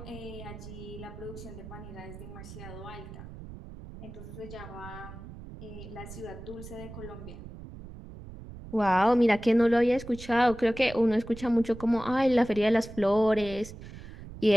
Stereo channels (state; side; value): noise; right; rumble, 14 dB below the sound